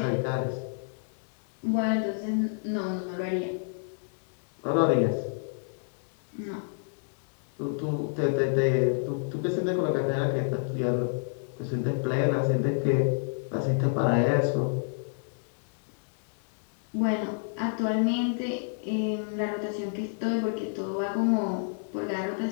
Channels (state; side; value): silent; right; digital silence